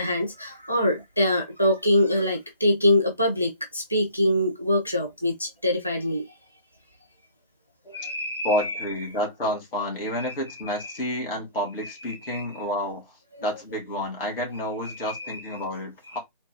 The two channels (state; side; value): inverted; both; correlation -0.52